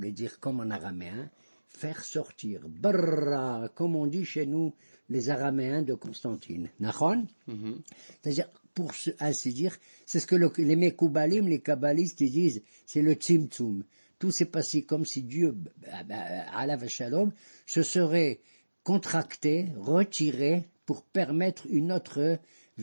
dire comme en araméen, faire sortir. Barra, comme on dit chez nous, les araméens de Constantine. Nachon? C'est-à-dire, pour ainsi dire, c'est ce que les Mekoubalim, les kabbalistes, ils disent, c'est le tzimtzum. Tout s'est passé comme si Dieu, alav shalom, se serait contracté, retiré, pour permettre une autre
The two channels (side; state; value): both; inverted; correlation -1.00